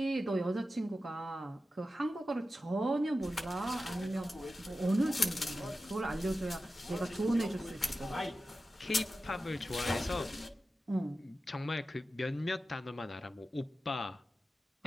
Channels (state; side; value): normal; both; correlation 0.93